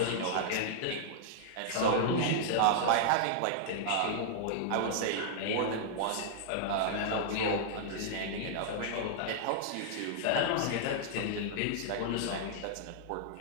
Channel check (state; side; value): different; both; correlation -0.01